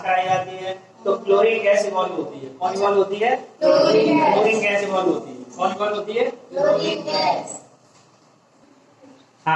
कराई जाती है तो क्लोरीन गैस इवॉल्व होती है। कौन इवॉल्व होती है? क्लोरीन गैस इवॉल्व होती है। कौन इवॉल्व होती है? Chlorine gas.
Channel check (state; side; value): identical; both; correlation 1.00